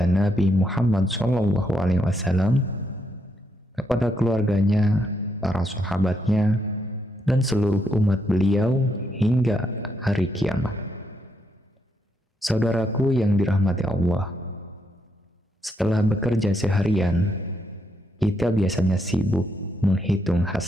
Nabi Muhammad SAW, kepada keluarganya, para sahabatnya, dan seluruh umat beliau hingga hari kiamat. Saudaraku yang dirahmati Allah, setelah bekerja seharian, kita biasanya sibuk menghitung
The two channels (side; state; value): both; normal; correlation 0.78